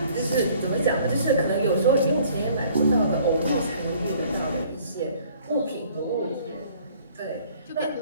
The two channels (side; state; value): both; inverted; correlation -0.56